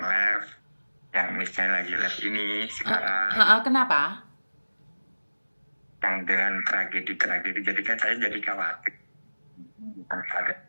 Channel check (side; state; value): both; inverted; correlation -1.00